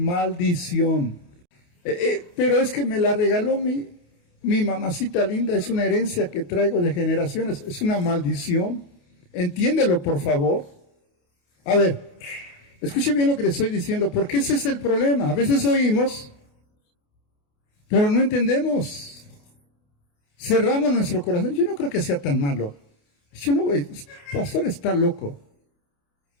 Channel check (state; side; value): late; right; 28 ms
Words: Pero es que me la regaló mi mamacita linda, es una herencia que traigo de generaciones, es una maldición. Entiéndelo, por favor. A ver, escuche bien lo que le estoy diciendo, porque ese es el problema. A veces oímos, pero no entendemos. Cerramos nuestro corazón. Yo no creo que sea tan malo. Yo no voy, pastor está loco.